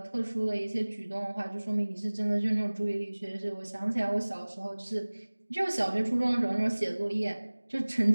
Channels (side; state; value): both; inverted; correlation -1.00